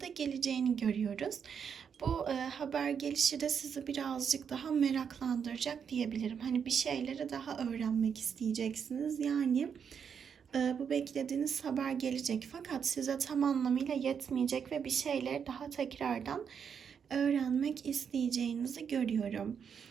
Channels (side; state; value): left; quieter; 7.1 dB